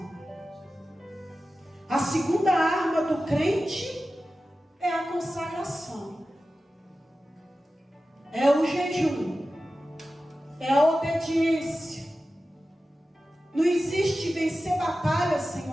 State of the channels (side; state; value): both; normal; correlation 0.94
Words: A segunda arma do crente é a consagração. É o jejum. É a obediência. Não existe vencer batalhas sem